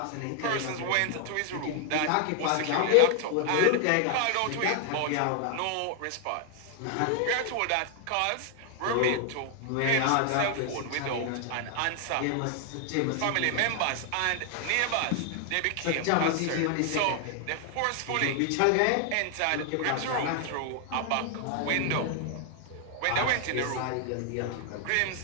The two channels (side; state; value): both; different; correlation 0.00